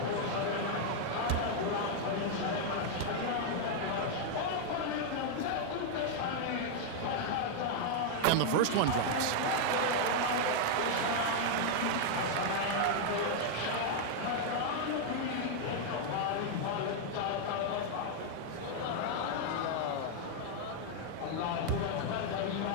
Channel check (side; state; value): both; different; correlation 0.00